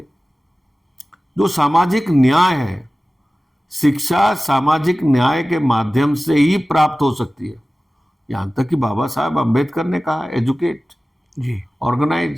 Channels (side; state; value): both; normal; correlation 0.97